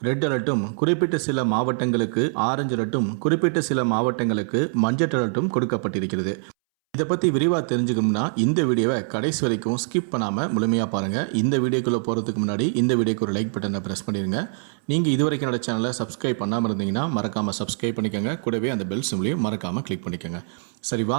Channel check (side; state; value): left; silent; 63 dB below the other